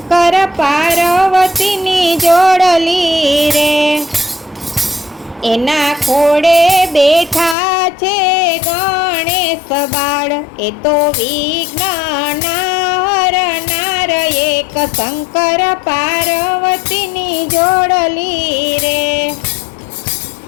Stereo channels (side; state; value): right; drops out; at 7.6 s